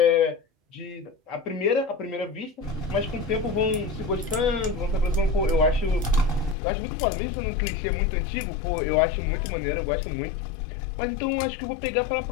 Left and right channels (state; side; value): drops out; right; at 6.6 s